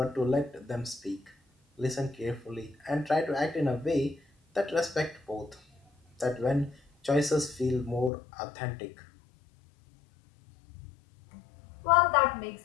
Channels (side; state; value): right; drops out; at 8.1 s